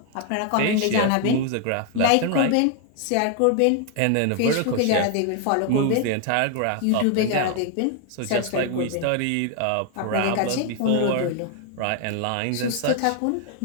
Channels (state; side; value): different; both; correlation 0.00